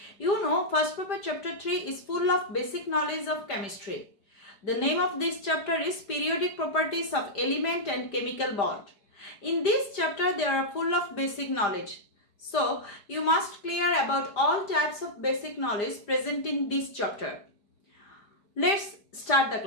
You know, first paper chapter 3 is full of basic knowledge of chemistry. The name of this chapter is Periodic Properties of Element and Chemical Bond. In this chapter, they are full of basic knowledge. So, you must clear about all types of basic knowledge present in this chapter. Let's start the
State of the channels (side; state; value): right; late; 5.0 ms